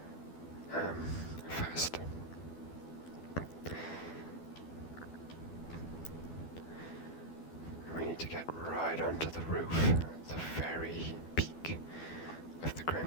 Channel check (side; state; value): right; late; 12 ms